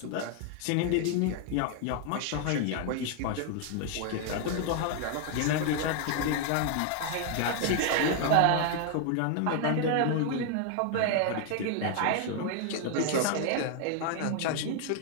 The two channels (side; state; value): both; different; correlation 0.00